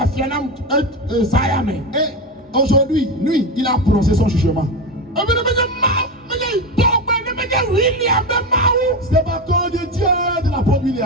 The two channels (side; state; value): both; normal; correlation 0.18